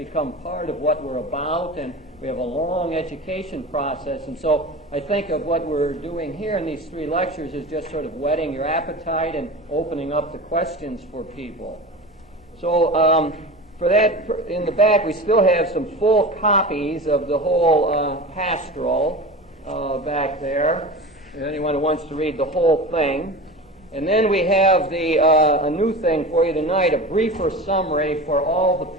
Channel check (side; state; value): both; normal; correlation 0.31